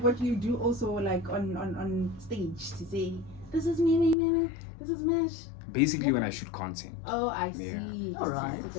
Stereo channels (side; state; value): right; drops out; at 4.2 s